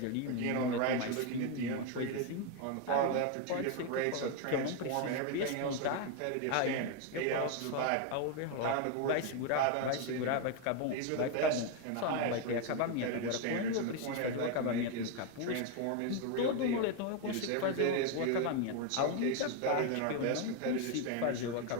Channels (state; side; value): different; both; correlation 0.01